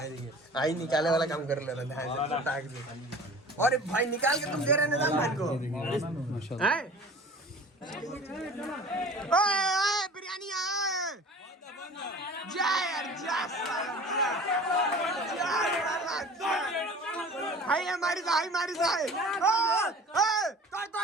आई निकाले वाला काम कर ले रहा है। और भाई निकाल के तुम दे रहे निजाम भाई को हैं। ओए बिरयानी जा यार जा हाय हमारी हाय हमारी हाय। तोड़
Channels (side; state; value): both; normal; correlation 0.42